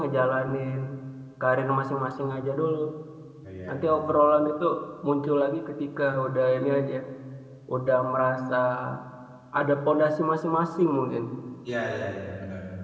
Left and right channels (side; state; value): both; identical; correlation 1.00